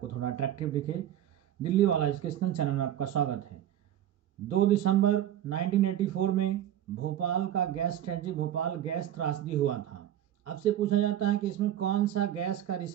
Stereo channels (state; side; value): quieter; left; 11.5 dB